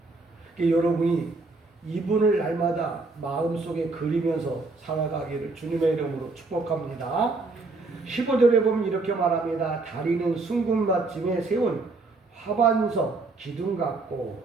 그러니까 여러분이 이분을 날마다 마음속에 그리면서 살아가기를 주님의 이름으로 축복합니다. 15절에 보면 이렇게 말합니다. 다리는 순금받침에 세운 화반석 기둥 같고,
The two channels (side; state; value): left; quieter; 3.5 dB